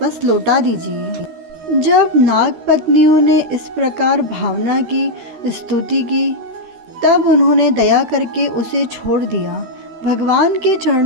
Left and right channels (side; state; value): left; late; 13 ms